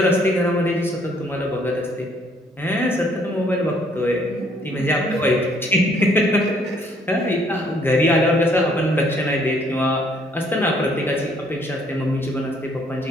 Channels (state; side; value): normal; both; correlation 0.64